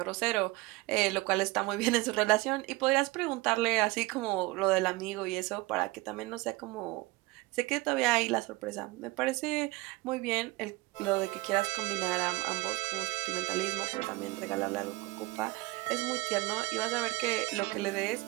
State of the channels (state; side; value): quieter; left; 21.3 dB